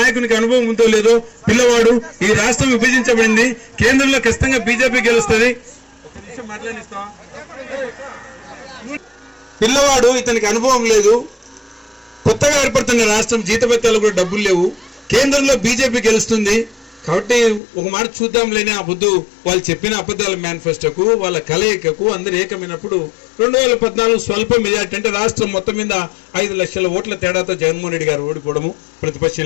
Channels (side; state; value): right; drops out; at 17.6 s